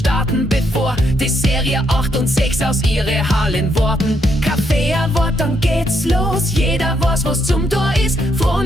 bevor die Serie 8 und 6 aus ihre Hallen warten. Kaffee ein Wort, dann geht's los, jeder weiß, was zum Tor ist.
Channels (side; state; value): both; normal; correlation 0.76